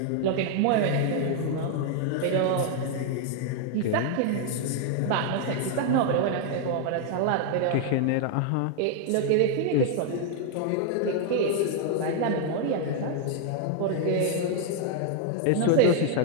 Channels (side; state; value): both; different; correlation 0.00